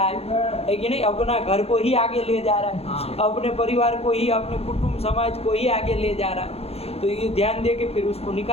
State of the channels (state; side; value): late; right; 0.29 ms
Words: है कि नहीं, अपना घर को ही आगे ले जा रहा है, अपने परिवार को ही, अपने कुटुंब समाज को ही आगे ले जा रहा है। तो ये ध्यान दे के फिर उसको